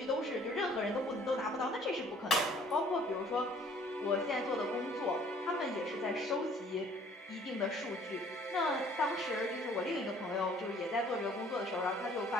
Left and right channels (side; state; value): both; normal; correlation 0.56